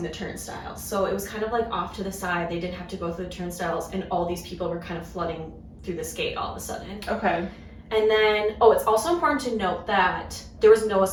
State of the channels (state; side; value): identical; both; correlation 1.00